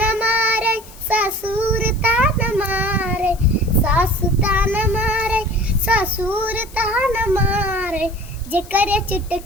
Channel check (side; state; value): left; noise; hiss, 21 dB below the sound